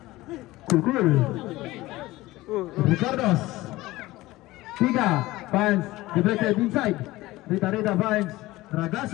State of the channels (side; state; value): right; quieter; 18.5 dB